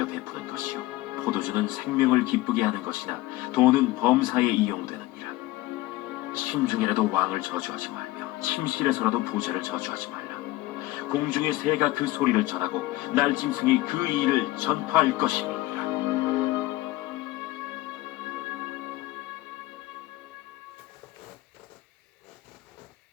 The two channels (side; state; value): right; quieter; 18.1 dB